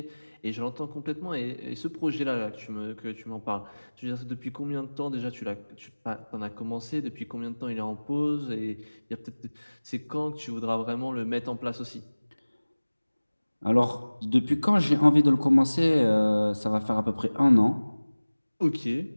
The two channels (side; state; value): both; inverted; correlation -1.00